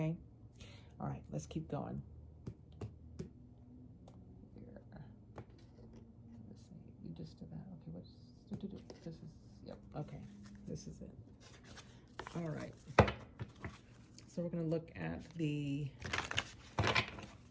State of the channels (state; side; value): identical; both; correlation 1.00